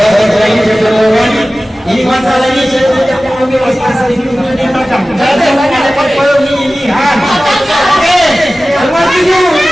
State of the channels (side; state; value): both; normal; correlation 0.96